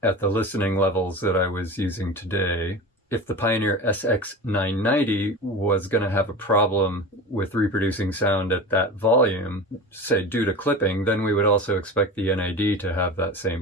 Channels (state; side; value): normal; both; correlation 0.30